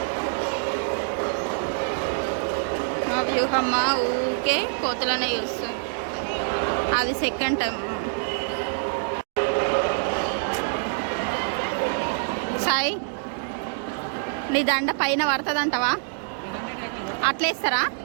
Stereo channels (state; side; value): silent; left; digital silence